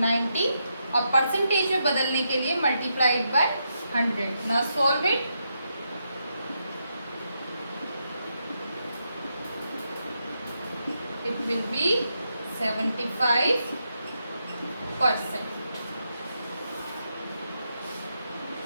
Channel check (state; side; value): inverted; both; correlation -0.82